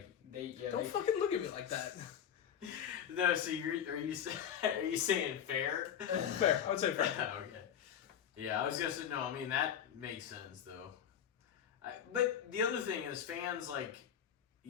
they fucking look at me like that. No, so are you saying fair? Fair, I would say fair. Okay. Yeah, I was gonna say no. I mean that makes sense though. But the other thing is fans like.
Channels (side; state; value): right; quieter; 9.1 dB